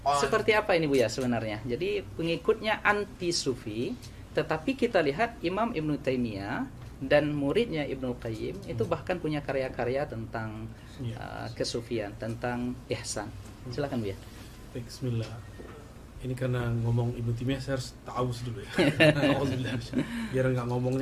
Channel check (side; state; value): both; identical; correlation 1.00